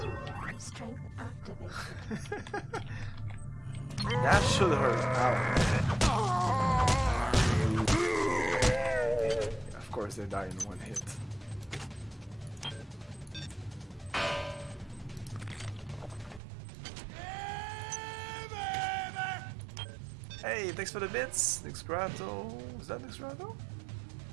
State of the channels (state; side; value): drops out; left; at 16.4 s